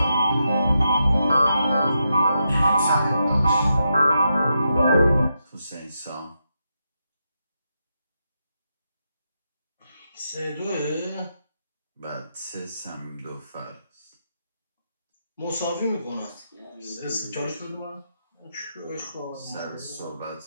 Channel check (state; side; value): inverted; both; correlation -0.84